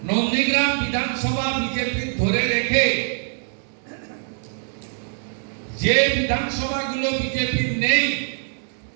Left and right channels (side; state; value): left; silent; 56 dB below the other